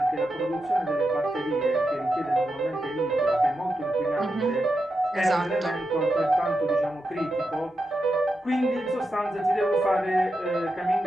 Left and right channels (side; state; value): both; normal; correlation 0.88